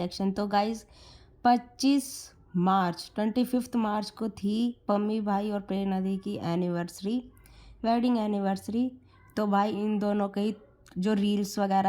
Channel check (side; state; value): both; identical; correlation 1.00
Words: तो गाइज 25 मार्च को थी पम्मी भाई और प्रेरणा दी की एनिवर्सरी, वेडिंग एनिवर्सरी। तो भाई इन दोनों के जो रील्स